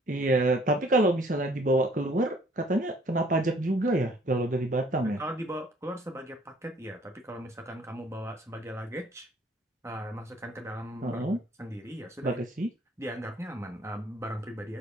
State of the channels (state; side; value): normal; both; correlation 0.59